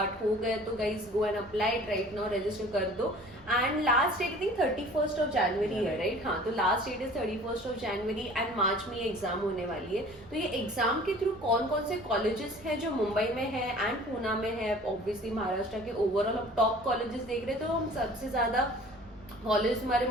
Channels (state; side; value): normal; both; correlation 0.47